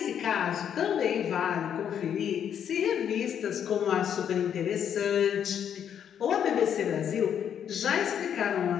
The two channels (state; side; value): quieter; right; 8.8 dB